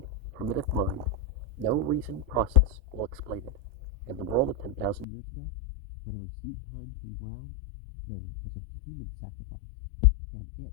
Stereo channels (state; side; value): drops out; right; at 5.1 s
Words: primitive mind. No reasoned process will explain it. In the world of 10,000 years ago, whenever seed time came round, there was a human sacrifice, and